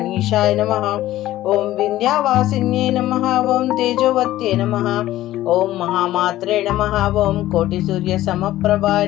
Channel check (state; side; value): quieter; right; 14.8 dB